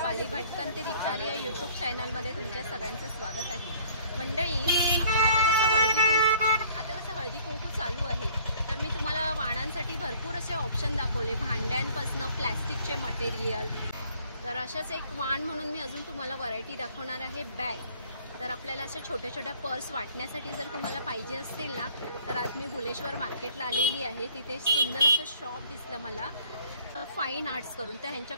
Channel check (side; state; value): both; inverted; correlation -0.56